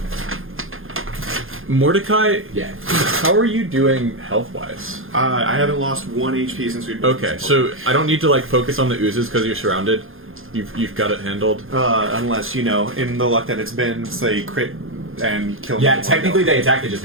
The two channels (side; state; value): left; late; 0.60 ms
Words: Mordecai, Yeah. how are you doing health-wise? I haven't lost 1 HP since we've been Okay, so I don't need to like focus on the oozes because you're surrounded. You've got it handled. Unless, in the luck that it's been, say, crit and kill me. Yeah, with technically one they attacked, they just